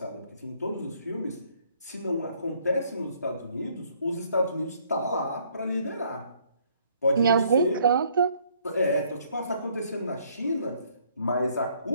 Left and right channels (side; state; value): both; inverted; correlation -0.65